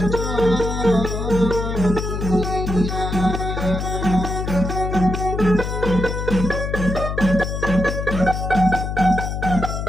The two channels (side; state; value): left; noise; hum, 3 dB below the sound